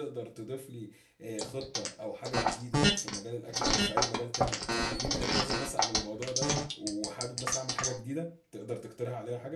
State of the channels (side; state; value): both; identical; correlation 1.00